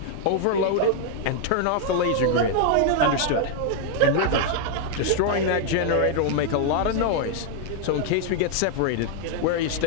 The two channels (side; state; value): both; different; correlation 0.00